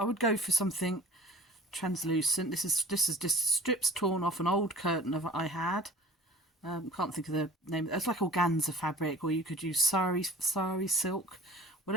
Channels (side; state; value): both; normal; correlation 0.45